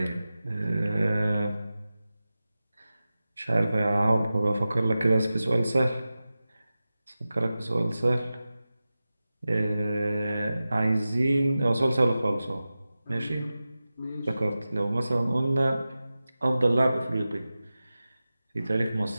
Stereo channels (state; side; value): inverted; both; correlation -0.95